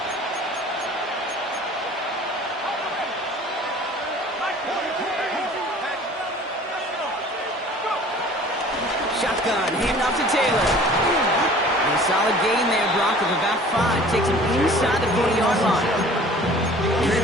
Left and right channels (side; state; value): both; normal; correlation 0.48